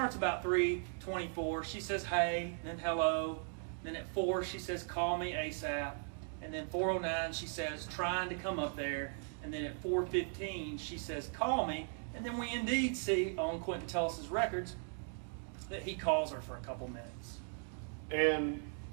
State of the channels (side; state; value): left; silent; 52 dB below the other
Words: about 3:24. She says, "Hey," then "Hello." Then at 4, she says, "Call me ASAP." And then 4:09, she says, "Trying to come up there." And then at 4:15, she says, "Call me." And then we indeed see on Quentin Tellis' records that he calls her for a couple minutes. And